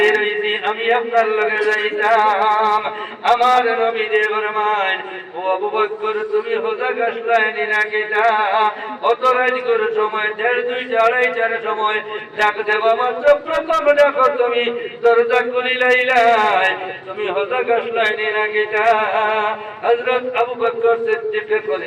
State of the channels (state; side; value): identical; both; correlation 1.00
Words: হইছি আমি আপনার লগে যাইতাম আমার নবী দে ফরমান ও আবু বকর তুমি হোজা গাছলাইনি না কিটা অত রাত করে সময় 1:30 2:30 সময় ডাক দেবা মাত্র প্রথম ডাকো তুমি দরজা খুলিলাই তুমি হোজা গাছলাইনি না কিটা হযরত আবু বকর সিদ্দিক কইলেন